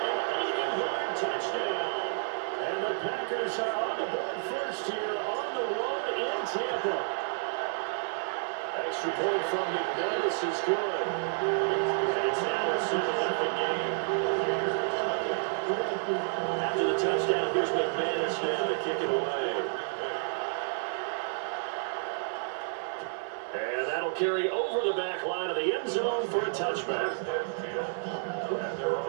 80-yard touchdown. And the Packers are on the board first here on the road in Tampa. Extra point from McManus is good. It's now a 7-0 game. After the touchdown, here's McManus now to kick it away. And that'll carry over the back line of the end zone for a touchback.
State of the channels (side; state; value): left; silent; 55 dB below the other